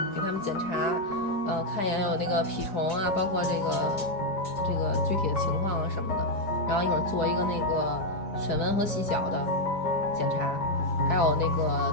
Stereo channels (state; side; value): late; right; 4.8 ms